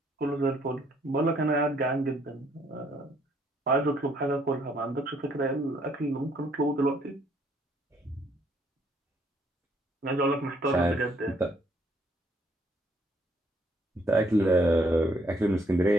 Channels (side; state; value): both; normal; correlation 0.67